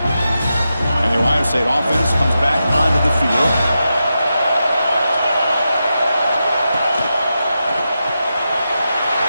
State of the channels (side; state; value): both; inverted; correlation -0.89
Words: Ohio State offense comes back onto the field.